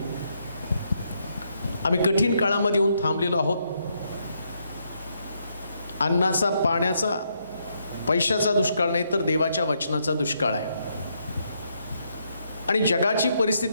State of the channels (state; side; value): inverted; both; correlation -0.76